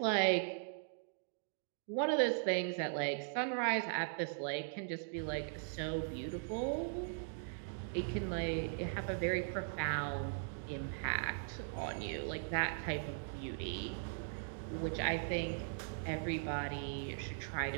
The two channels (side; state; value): left; silent; digital silence